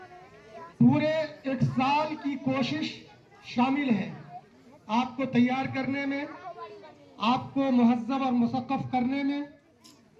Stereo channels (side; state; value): both; identical; correlation 1.00